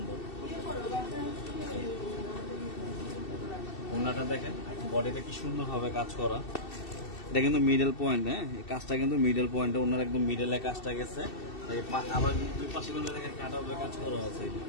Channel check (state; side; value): late; right; 2.7 ms